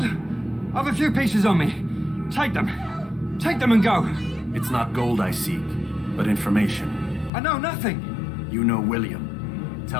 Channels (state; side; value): drops out; right; at 7.3 s